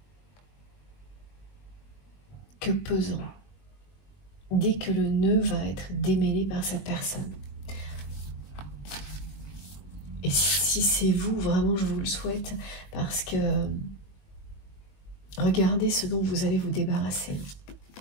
que pesant. Dès que le nœud va être démêlé par cette personne. Et si c'est vous, vraiment, je vous le souhaite, parce que regardez ce dont vous allez vous débarrasser.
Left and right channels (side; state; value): right; late; 21 ms